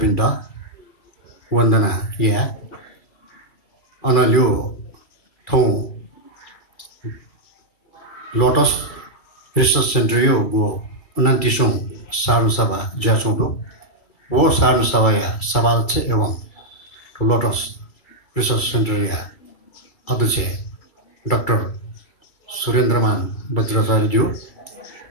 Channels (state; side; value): late; right; 2.3 ms